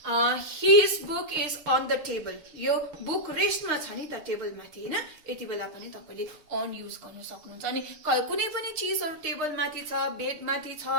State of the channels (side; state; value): left; late; 6.5 ms